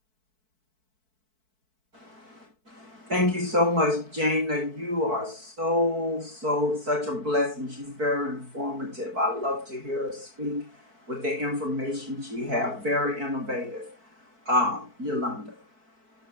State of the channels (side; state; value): left; late; 4.6 ms